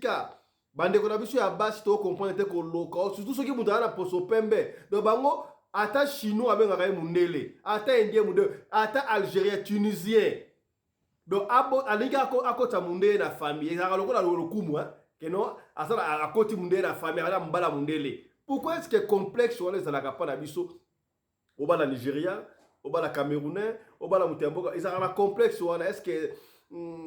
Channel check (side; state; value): both; identical; correlation 1.00